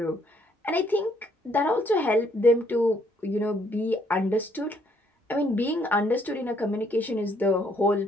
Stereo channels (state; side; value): normal; both; correlation 0.68